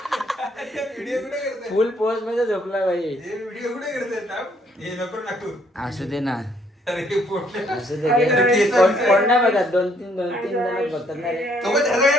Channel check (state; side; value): normal; both; correlation 0.67